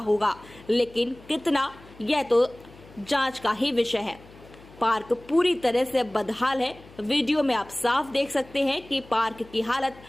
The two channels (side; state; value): left; noise; hum, 22 dB below the sound